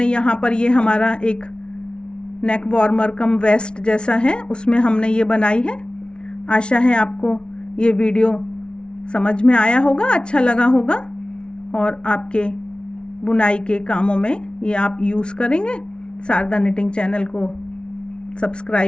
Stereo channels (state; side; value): late; right; 0.056 ms